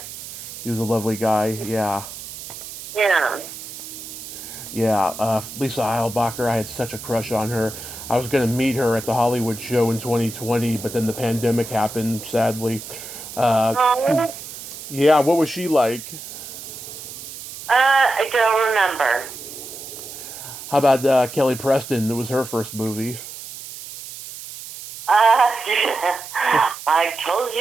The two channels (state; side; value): noise; right; hiss, 12 dB below the sound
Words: He was a lovely guy. Yeah. Yeah. Yeah. Lisa Eilbacher. I had such a crush on her. I was going to meet her at the Hollywood show in 2020, but then the pandemic happened. Sadly. Yeah. What was she like? I don't remember. How about Kelly Preston? It was her first movie. I told